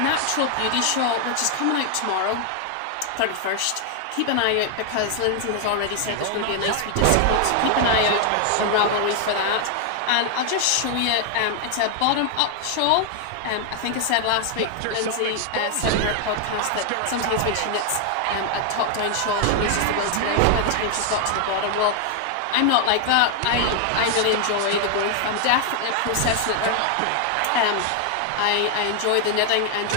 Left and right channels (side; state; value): both; different; correlation 0.00